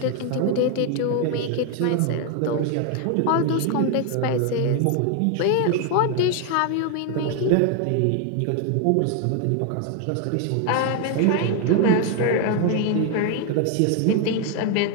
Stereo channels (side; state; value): both; different; correlation 0.01